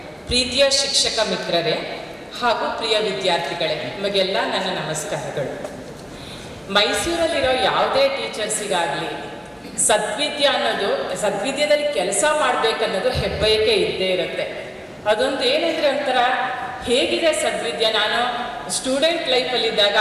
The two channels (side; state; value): both; identical; correlation 1.00